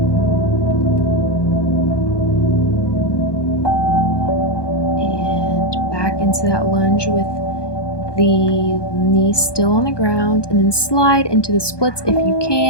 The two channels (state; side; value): late; right; 1.2 ms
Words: And back into that lunge with the knees still on the ground, and then slide into the splits if you